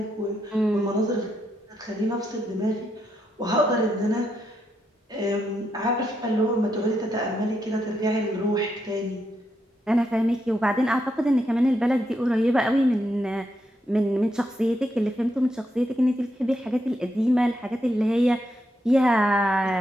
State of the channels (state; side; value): normal; both; correlation 0.81